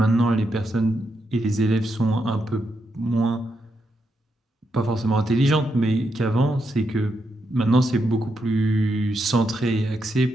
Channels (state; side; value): normal; both; correlation 0.82